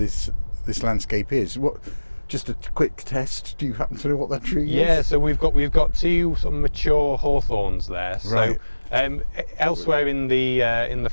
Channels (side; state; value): both; inverted; correlation -1.00